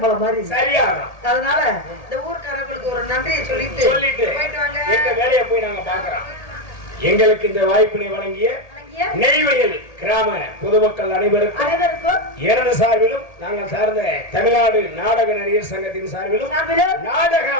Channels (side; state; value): right; late; 1.8 ms